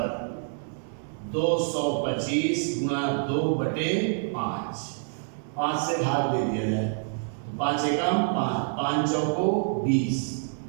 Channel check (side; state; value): left; silent; digital silence